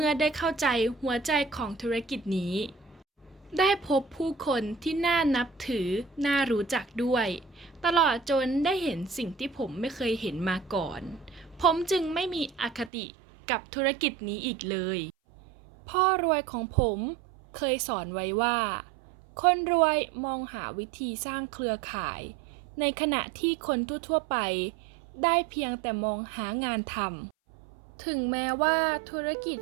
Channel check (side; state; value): left; drops out; at 12.9 s